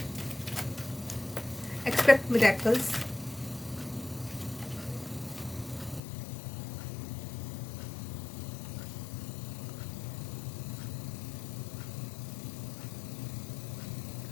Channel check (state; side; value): drops out; right; at 6.0 s